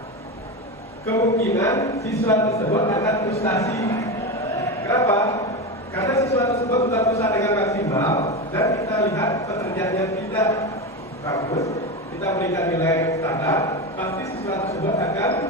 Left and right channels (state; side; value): normal; both; correlation 0.19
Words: Kemungkinan siswa tersebut akan frustasi. Kenapa? Karena siswa tersebut sudah berusaha dengan maksimal dan kita lihat pekerjaannya tidak bagus, kita berikan nilai standar, pasti siswa tersebut akan